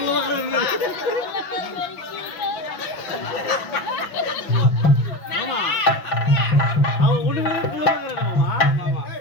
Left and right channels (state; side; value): late; right; 5.8 ms